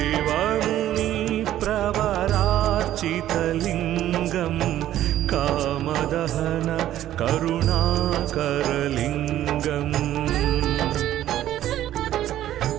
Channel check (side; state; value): left; quieter; 12.7 dB